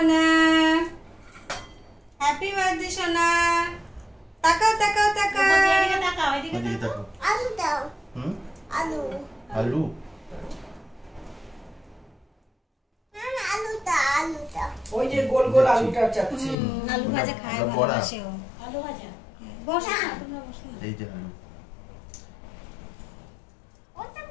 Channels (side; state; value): right; drops out; at 16.6 s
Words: happy birthday সোনা। তাকাও তাকাও তাকাও, ওদিকে তাকাও। আলু দাও। হুম? আলু। আলু? আলুটা আলুটা। ওই যে গোল গোল আলুটা চাচ্ছি। আলু ভাজা খায় ওটা বড়া। ভালোবাসে ও। আলু ভাজা বসো না, তোমরা বসো না। এই যে আলু।